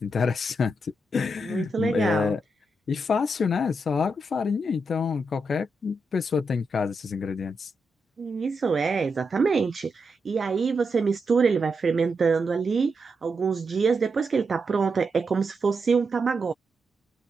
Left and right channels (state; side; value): normal; both; correlation 0.84